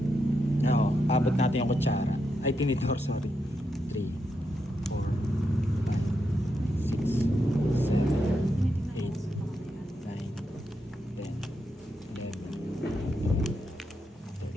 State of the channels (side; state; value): both; normal; correlation 0.83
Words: Oo, abot natin yung kutsara. Ay, tinidor, sorry. 3, 4, 5, 6, 7, 8, 9, 10, 11.